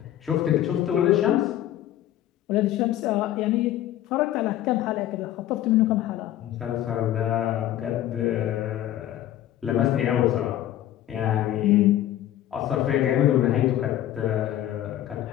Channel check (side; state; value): right; quieter; 12.8 dB